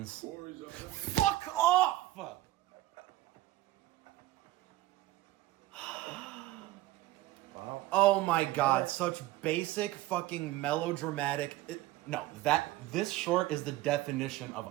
Fuck off! Wow. Oh my god, such basic fucking melodramatic. This short is the definition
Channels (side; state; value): left; quieter; 16.4 dB